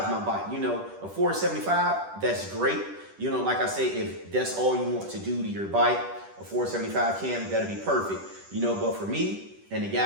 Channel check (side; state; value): left; late; 10 ms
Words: my bike. A 475, that's great. Like I say, if that's all you want to do to your bike, a 475 cam, that'll be perfect. But for me and the